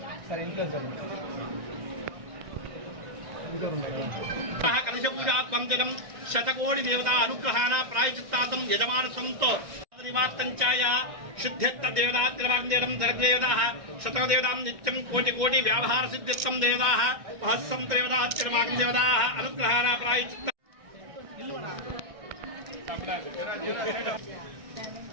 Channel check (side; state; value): left; late; 1.6 ms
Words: కలశపూజాత్మం జగం శతకోటి దేవతా అనుగ్రహాణ ప్రాయచిత్తాతం యజమానసంతో నివార్తంచాయ శుద్ధ్యత్త దేవతాత్రివాగ్దేవం జగదేవతాః శతదేవతాం నిత్యం కోటి కోటి వ్యావహార సిద్ధిత్తం దేవతాః మహస్సం దేవతాత్రివాగ్దేవతాః అనుగ్రహాణ ప్రాయచిత్త